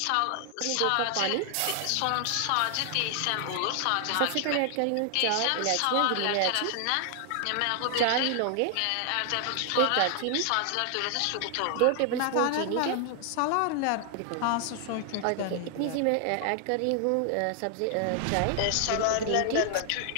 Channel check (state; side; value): different; both; correlation 0.00